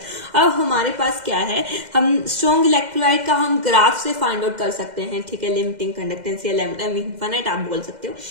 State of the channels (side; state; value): left; late; 2.1 ms